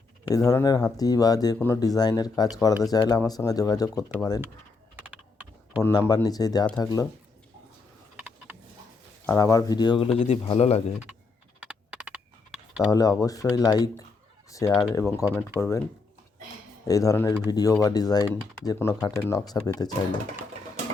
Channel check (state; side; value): quieter; right; 4.2 dB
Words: এই ধরনের হাতি বা যে কোনো ডিজাইনের কাজ করাতে চাইলে আমার সঙ্গে যোগাযোগ করতে পারেন। ফোন নাম্বার নিচেই দেওয়া থাকলো। আর আমার ভিডিওগুলো যদি ভালো লাগে তাহলে অবশ্যই লাইক, শেয়ার এবং কমেন্ট করবেন। এই ধরনের ভিডিও বা ডিজাইন যে কোনো খাটের নকশা পেতে চাইলে